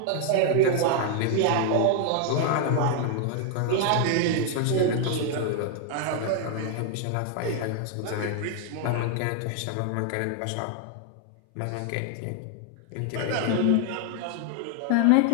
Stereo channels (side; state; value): both; different; correlation 0.00